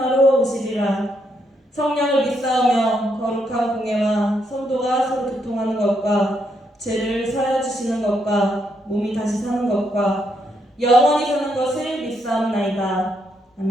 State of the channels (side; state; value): both; normal; correlation 0.77